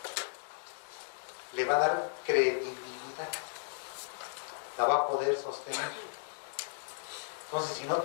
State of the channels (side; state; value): right; silent; digital silence